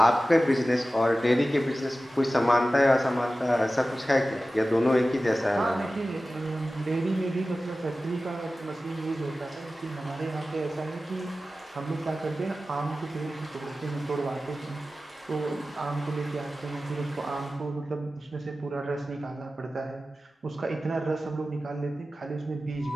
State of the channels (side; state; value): both; normal; correlation 0.95